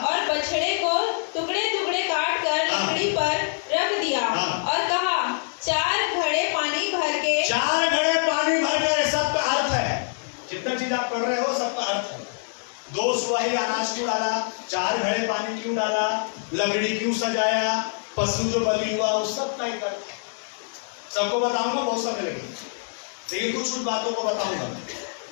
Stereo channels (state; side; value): silent; right; 60 dB below the other